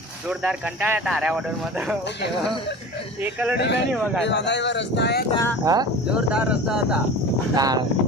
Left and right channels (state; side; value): normal; both; correlation 0.35